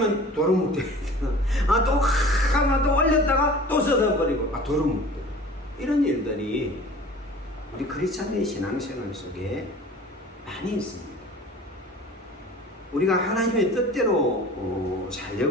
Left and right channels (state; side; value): normal; both; correlation 0.43